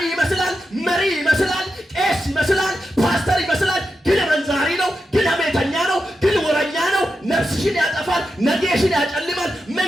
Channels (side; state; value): both; normal; correlation 0.88